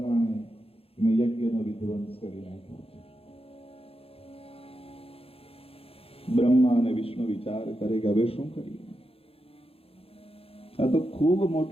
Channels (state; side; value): late; right; 0.28 ms